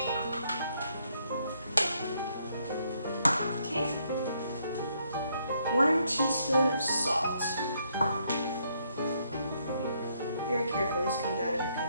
Okay. 1 teaspoon of salt. Very careful, this comes out of here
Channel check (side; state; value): both; inverted; correlation -0.72